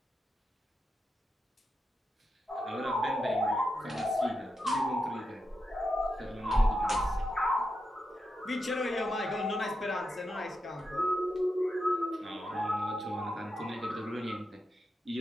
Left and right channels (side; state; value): both; normal; correlation 0.87